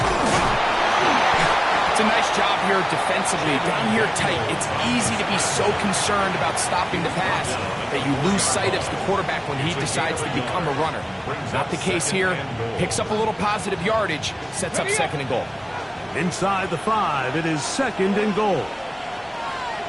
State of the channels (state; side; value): identical; both; correlation 1.00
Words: It's a nice job here defensively. Down here tight, it's easy to be so concerned about stopping the pass that you lose sight of the quarterback when he decides to become a runner. Not the case here. Picks up a little positive yardage, sets up 2nd and goal. Inside the 5, it is 2nd and goal.